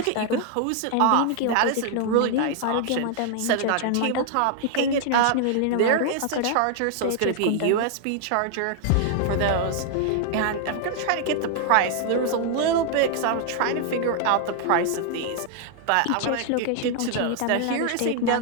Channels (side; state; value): both; different; correlation 0.00